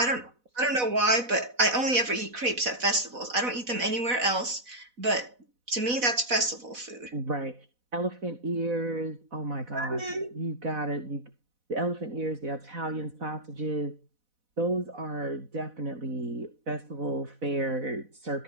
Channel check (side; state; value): left; late; 4.1 ms